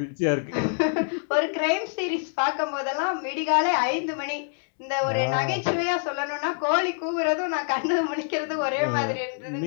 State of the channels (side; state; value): right; silent; digital silence